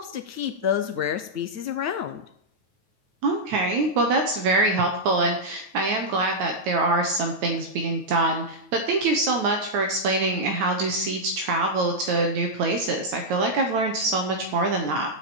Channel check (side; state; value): left; late; 9.3 ms